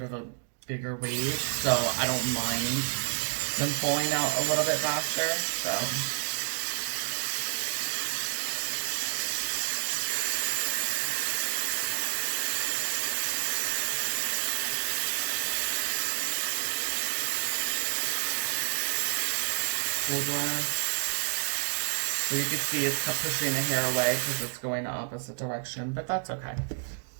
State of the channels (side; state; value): left; silent; 58 dB below the other